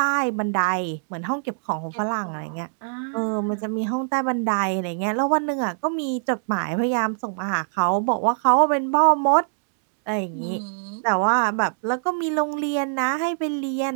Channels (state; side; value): silent; left; digital silence